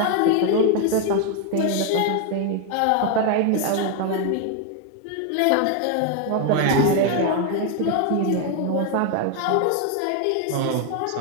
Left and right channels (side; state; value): both; different; correlation 0.01